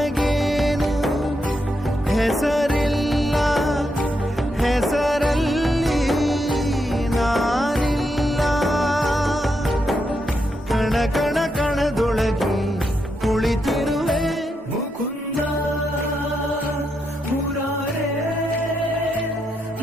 ಹೆಸರಿಲ್ಲ ಹೆಸರಲ್ಲಿ ನಾನಿಲ್ಲ ಕಣ ಕಣ ಕಣದೊಳಗೆ ಕುಳಿತಿರುವೆ ಮುಕುಂದ ಮುರಾರೇ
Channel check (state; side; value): normal; both; correlation 0.82